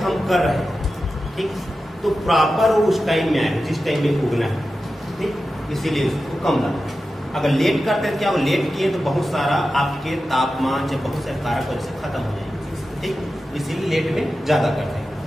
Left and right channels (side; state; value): both; normal; correlation 0.92